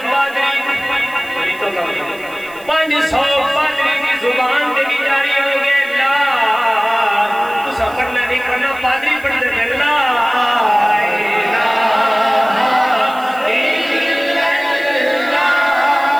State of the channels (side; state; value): right; noise; hiss, 23 dB below the sound